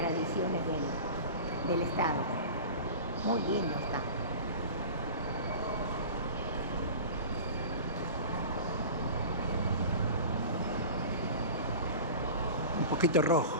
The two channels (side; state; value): both; inverted; correlation -0.35